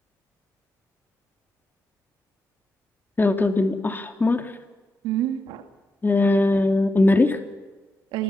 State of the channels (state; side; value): normal; both; correlation 0.87